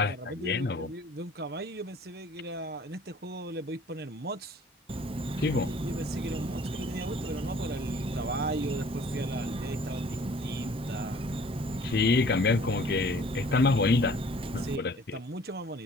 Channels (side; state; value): both; normal; correlation 0.52